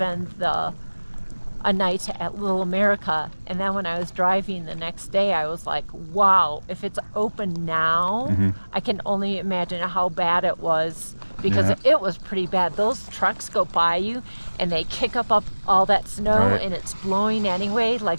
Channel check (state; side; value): inverted; both; correlation -1.00